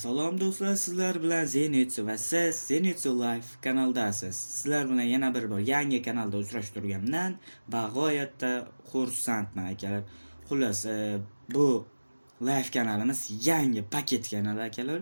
do'stlar, sizlar bilan Zenitsu va siz Zenitsu Live kanaldasiz. Sizlar bilan yana bir bor yangi kanalda uchrashib turganimdan bag'oyatda xursandman akalar. Xullas, bu live kanalimiz yangi paket kanal akalar.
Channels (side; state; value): both; inverted; correlation -1.00